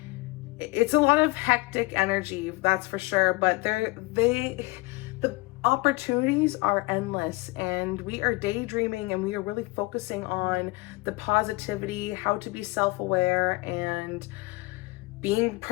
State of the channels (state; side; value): quieter; right; 24.2 dB